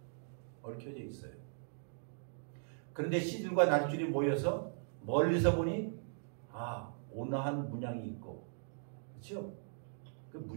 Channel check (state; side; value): silent; left; digital silence